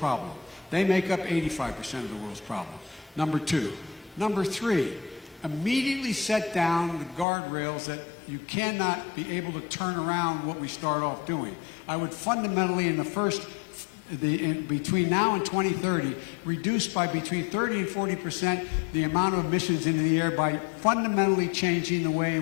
They make up 85% of the world's problem. Number two. Number three, immediately set down the guardrails that you cannot be able to turn around what we start off doing. I would fundamentally, between now and 2030, reduce by between 30 and 40% the amount of emissions into the air by fundamentally changing the way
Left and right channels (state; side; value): drops out; right; at 7.2 s